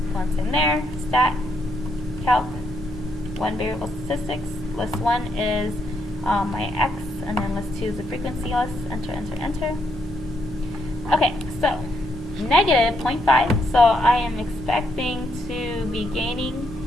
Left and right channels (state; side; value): normal; both; correlation 0.76